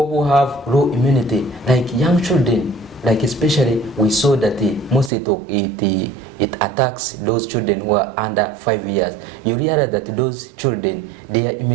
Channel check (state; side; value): drops out; left; at 5.1 s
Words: who have low immunity, like young children, like especially we saw that most it attacks those children who are under 5 years. You realize that those children, their